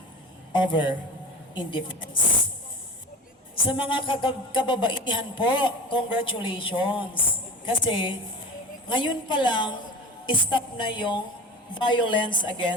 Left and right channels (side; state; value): both; normal; correlation 0.33